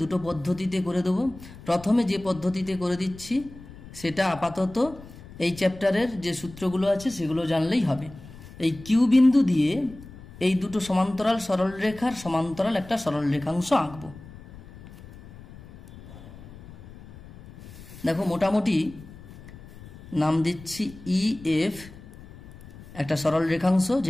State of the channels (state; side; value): noise; left; rumble, 18 dB below the sound